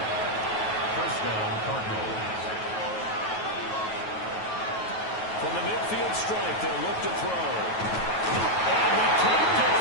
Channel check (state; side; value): late; right; 9.3 ms